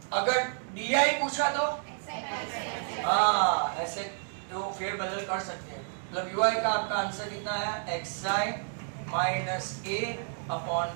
अगर डी पूछा तो हाँ ऐसे तो फेर बदल कर सकते हैं। मतलब यूआई का आपका आंसर कितना है? xi minus a upon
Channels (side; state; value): left; silent; digital silence